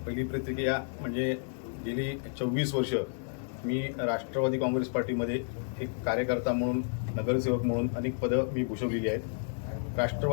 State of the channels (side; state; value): right; silent; 57 dB below the other